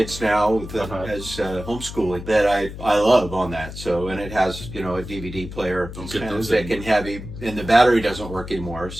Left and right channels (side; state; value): left; noise; hum, 11 dB below the sound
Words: now with as homeschooling that I love on that. So and it has a DVD player. Don't It's get kind of those thick and heavy, and the battery doesn't work anymore.